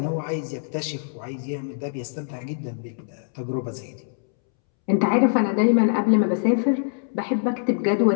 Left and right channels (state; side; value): silent; right; 63 dB below the other